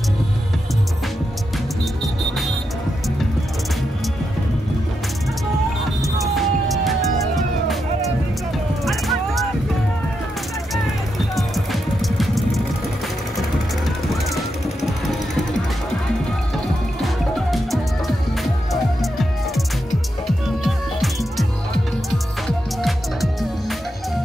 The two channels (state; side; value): normal; both; correlation 0.85